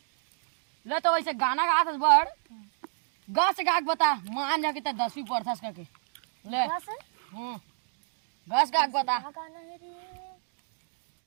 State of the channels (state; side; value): silent; left; digital silence